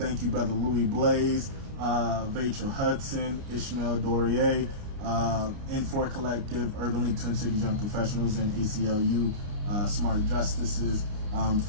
you, Brother Louis Blaze, Vachel Hudson, Ishmael Dorier, N4 Collective, Urban League Twin Cities Young Professionals, and ACLU Smart Justices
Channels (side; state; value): left; late; 29 ms